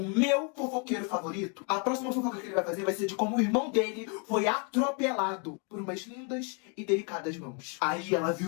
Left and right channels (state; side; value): quieter; right; 36.4 dB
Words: meu fofoqueiro favorito, a próxima fofoca que ele vai fazer vai ser de como o irmão dele foi atropelado por umas lindas e delicadas mãos. Aí ela